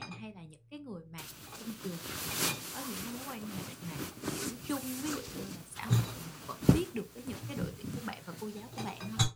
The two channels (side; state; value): both; identical; correlation 1.00